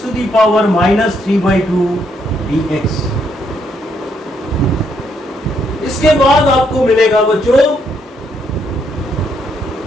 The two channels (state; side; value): normal; both; correlation 0.74